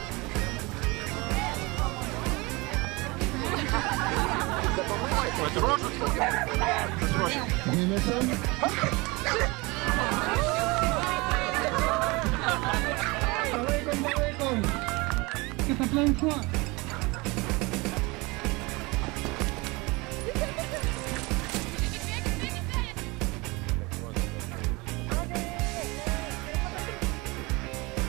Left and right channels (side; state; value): left; quieter; 24.8 dB